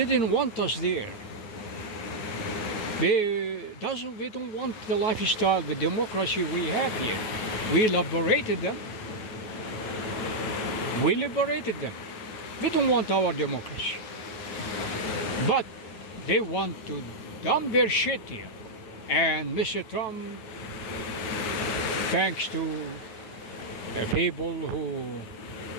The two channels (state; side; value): late; right; 9.2 ms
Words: want us there. They don't want the lifestyle, the democracy we have here. We liberated them. We liberated them. We don't want our democracy. But they want to dump their shit here. And Mr. Trump, thanks to people who